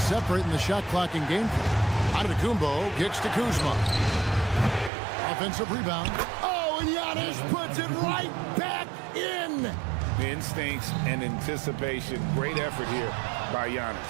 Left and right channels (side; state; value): left; drops out; at 4.9 s